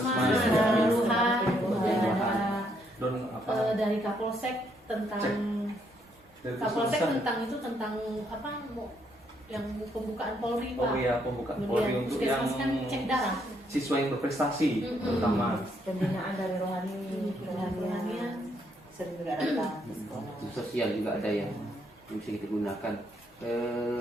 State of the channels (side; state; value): both; normal; correlation 0.73